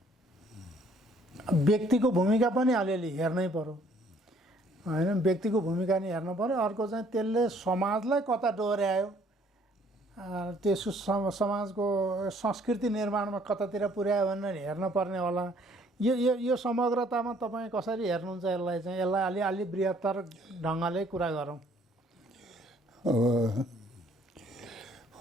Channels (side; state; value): both; normal; correlation 0.61